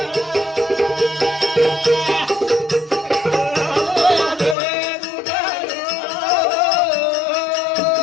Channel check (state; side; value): drops out; right; at 4.5 s